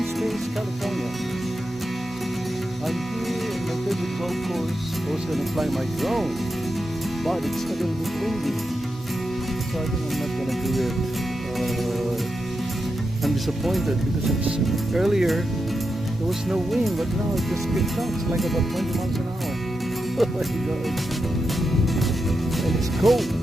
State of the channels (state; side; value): normal; both; correlation 0.87